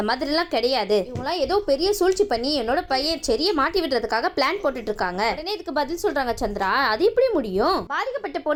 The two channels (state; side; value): identical; both; correlation 1.00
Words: மாதிரி எல்லாம் கிடையாது, இவங்களாம் ஏதோ பெரிய சூழ்ச்சி பண்ணி என்னோட பையன் செரிய மாட்டி விடுறதுக்காக பிளான் போட்டுட்டு இருக்காங்க. உடனே இதுக்கு பதில் சொல்றாங்க சந்திரா, அது எப்படி முடியும்? பாதிக்கப்பட்ட